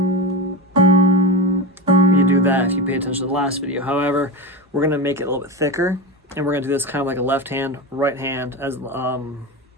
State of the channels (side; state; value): both; normal; correlation 0.20